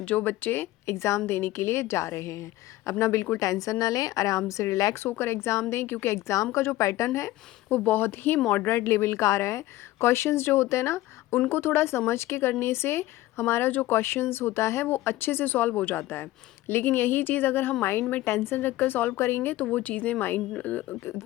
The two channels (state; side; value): quieter; right; 16.5 dB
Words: बच्चे एग्ज़ाम देने के लिए जा रहे हैं। अपना बिल्कुल टेंशन ना लें, आराम से रिलैक्स होकर एग्ज़ाम दें, क्योंकि एग्ज़ाम का जो पैटर्न है वो बहुत ही मॉडरेट लेवल का आ रहा है। क्वेश्चंस जो होते हैं ना, उनको थोड़ा समझ के करने से हमारा जो क्वेश्चंस होता है वो अच्छे से सॉल्व हो जाता है। लेकिन यही चीज़ अगर हम माइंड में टेंशन रखकर सॉल्व करेंगे तो वो चीज़ें